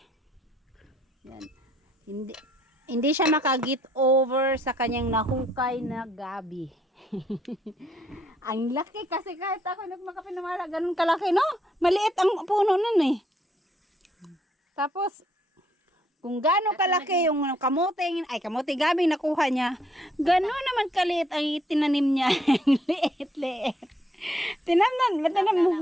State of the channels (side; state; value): both; normal; correlation 0.69